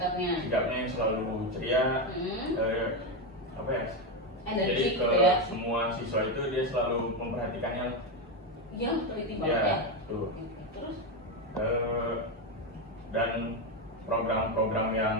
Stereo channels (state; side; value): normal; both; correlation 0.10